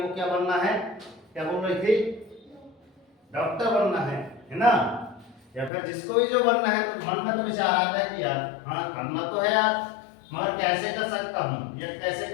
को क्या बनना है, क्या बोल रही थी, डॉक्टर बनना है ना। या फिर जिसको भी जो बनना है, तो मन में तो विचार आता है कि यार हाँ करना तो है यार, मगर कैसे कर सकता हूँ या कैसे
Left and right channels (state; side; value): drops out; right; at 5.7 s